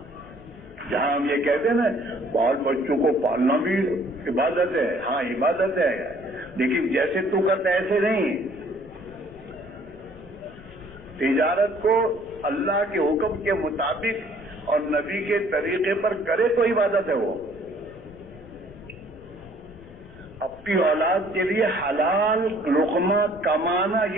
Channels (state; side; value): noise; left; rumble, 21 dB below the sound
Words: جہاں ہم یہ کہتے ہیں نا بال بچوں کو پالنا بھی عبادت ہے. ہاں عبادت ہے، لیکن جیسے تو کرتا ہے ایسے نہیں. تجارت کو اللہ کے حکم کے مطابق اور نبی کے طریقے پر کرے تو عبادت ہے. وہ اپنی اولاد کے لیے حلال لقمہ کمانا